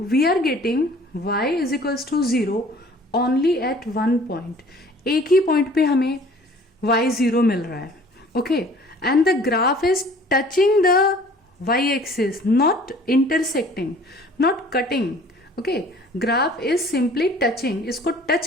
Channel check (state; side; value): normal; both; correlation 0.51